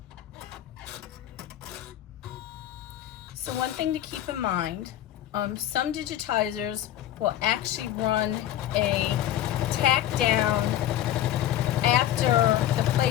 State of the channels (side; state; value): right; quieter; 12.3 dB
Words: So one thing to keep in mind, some digitizers will actually run a tack down after the